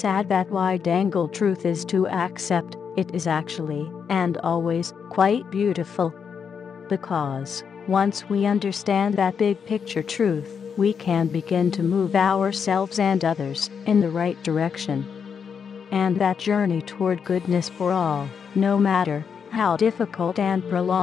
that wide-angle truth is to accept, it is actually, and always, quite beautiful. Because, once we understand that big picture truth, we can begin to move ourselves and others in the right direction. And that journey toward goodness for all, no matter how difficult and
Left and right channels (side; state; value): right; quieter; 6.7 dB